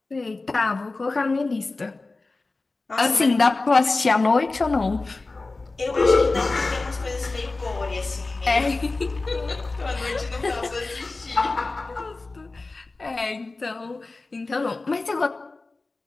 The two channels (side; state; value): right; quieter; 3.5 dB